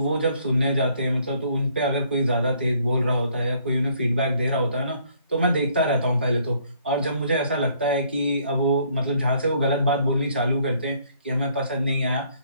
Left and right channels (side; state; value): both; inverted; correlation -0.64